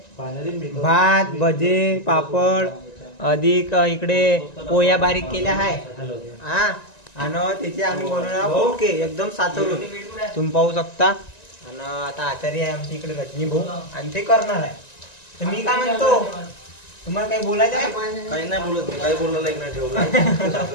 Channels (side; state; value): right; late; 1.9 ms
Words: भात भजे पापड अधिक इकडे पोया बारीक केल्या आहे हा. आणि त्याचे आम्ही बनवणार ओके एकदम साचवून तुम्ही पाहू शकता. आणि आता आचार्य आहे आमच्या इकडे रजनी भाऊ आणि ते करणार आहे. तर मी काय म्हणतो, तुम्हाला काही बोलायचं आहे? काही नाही बोलत, काही बोलला एक नाही ठेवला.